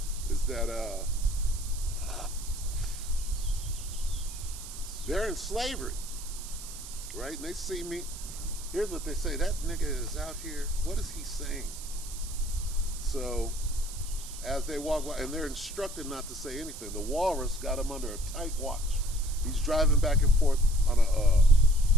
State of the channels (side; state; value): right; noise; hiss, 12 dB below the sound